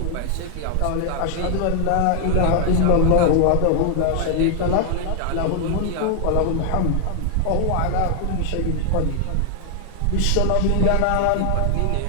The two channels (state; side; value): different; both; correlation 0.00